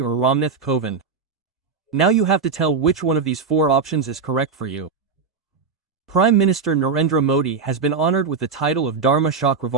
Ramnath Kovind. Now you have to tell which one of these 4 options is correct for you. Prime Minister Narendra Modi has been honored with the title of Dharma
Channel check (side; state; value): left; quieter; 5.2 dB